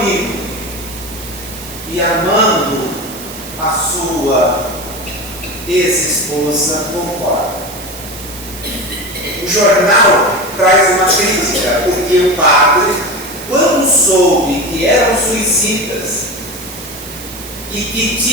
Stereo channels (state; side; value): noise; right; hiss, 13 dB below the sound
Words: e amando a sua ex-esposa, concorda. O jornal traz uma crítica, porque o padre, quando soube que eram suicidas e que